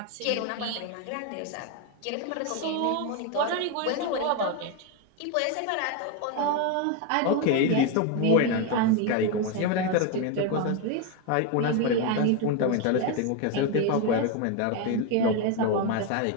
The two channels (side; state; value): both; different; correlation 0.02